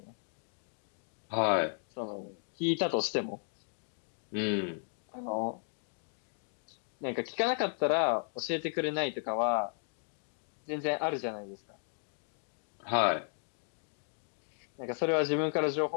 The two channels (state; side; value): silent; right; digital silence